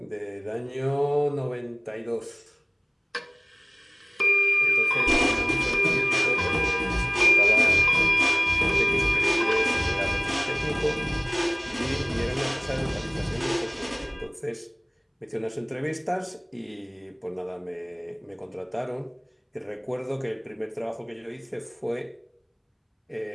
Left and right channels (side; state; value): both; identical; correlation 1.00